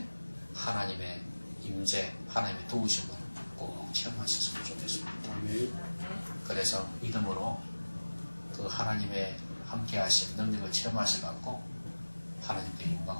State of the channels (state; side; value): inverted; both; correlation -1.00